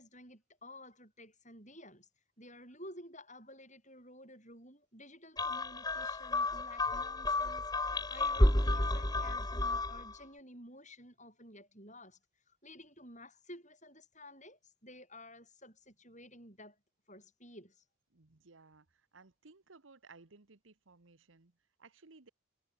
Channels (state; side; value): normal; both; correlation 0.60